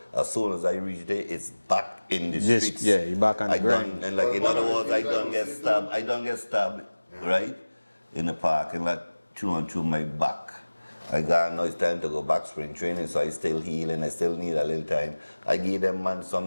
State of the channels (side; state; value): both; inverted; correlation -1.00